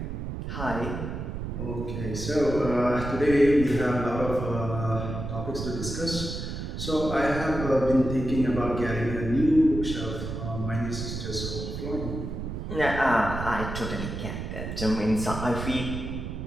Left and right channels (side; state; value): right; noise; rumble, 6 dB below the sound